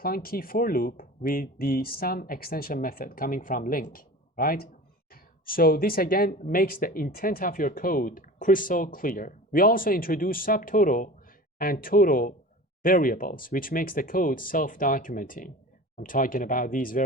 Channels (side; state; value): both; normal; correlation 0.36